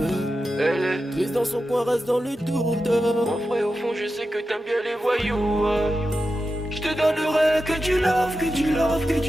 Elle est triste dans son coin, reste dans le doute. Mon frère au fond je sais que t'aimes bien les voyous. Je te donnerai que du love, que du love, que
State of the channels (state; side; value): normal; both; correlation 0.91